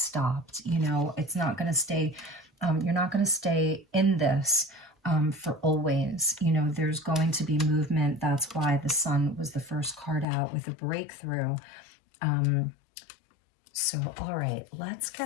You know, it's not going to stay, you're not going to stay in this for always. You know, there's going to be movement. That's why the Sun was the first card out with a breakthrough. So, all right, let's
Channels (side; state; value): right; drops out; at 10.2 s